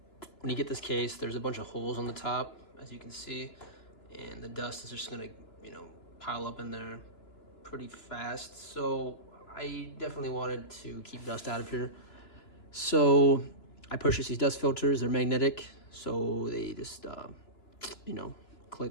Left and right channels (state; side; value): late; right; 2.9 ms